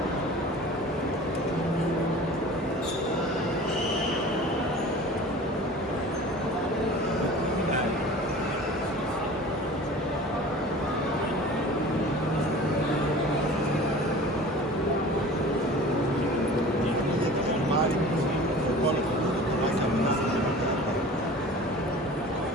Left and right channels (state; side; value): normal; both; correlation 0.41